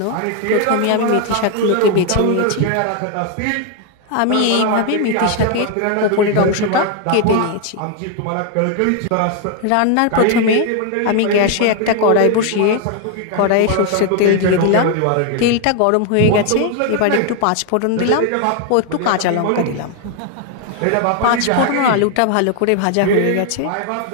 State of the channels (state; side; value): different; both; correlation 0.00